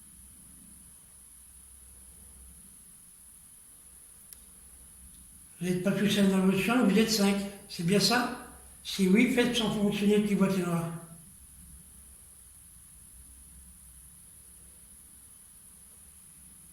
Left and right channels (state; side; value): identical; both; correlation 1.00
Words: Vous n'êtes pas tout seul dans votre chambre, vous êtes 5. C'est bien ça? Si oui, faites sans fonctionner le petit boîtier noir.